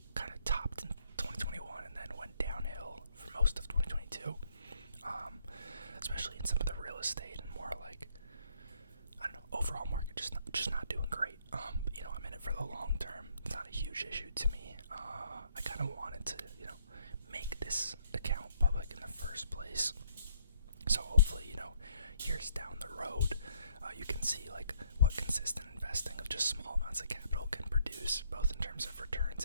kind of topped in 2021 and then went downhill for most of 2022, especially in some of the real estate and more overall market just not doing great. But, I'm in it for the long term. It's not a huge issue to me. I kind of wanted to, make this account public in the first place. So hopefully, years down the road, you can see what consistent investing of just small amounts of capital can produce, both in terms of returns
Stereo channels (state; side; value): inverted; both; correlation -0.67